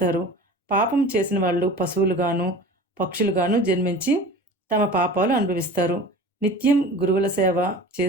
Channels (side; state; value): both; normal; correlation 0.38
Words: పాపం చేసిన వాళ్ళు పశువులుగాను పక్షులుగాను జన్మించి తమ పాపాలు అనుభవిస్తారు. నిత్యం గురువుల సేవ